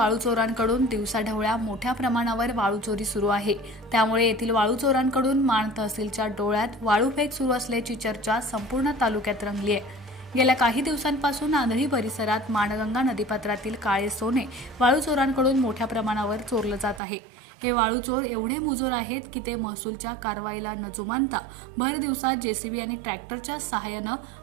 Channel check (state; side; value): drops out; left; at 17.0 s